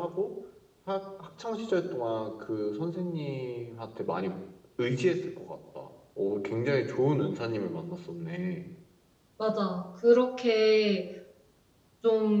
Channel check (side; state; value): both; identical; correlation 1.00